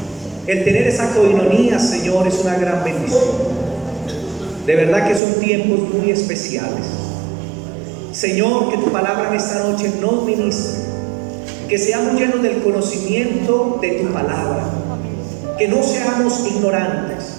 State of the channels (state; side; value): drops out; left; at 5.2 s